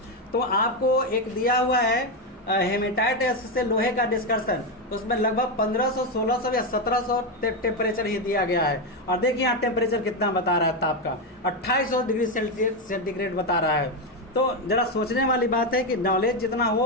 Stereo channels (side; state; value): both; normal; correlation 0.09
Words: तो आपको एक दिया हुआ है हेमेटाइट से लोहे का डिस्कशन, उसमें लगभग 1500, 1600 या 1700 टेम्परेचर ही दिया गया है। और देखिए यहाँ टेम्परेचर कितना बता रहा है ताप का, 2800 डिग्री सेंटीग्रेड बता रहा है। तो जरा सोचने वाली बात है कि नॉलेज जितना हो